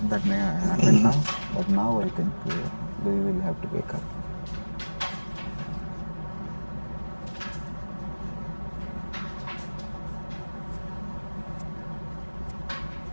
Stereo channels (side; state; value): both; inverted; correlation -1.00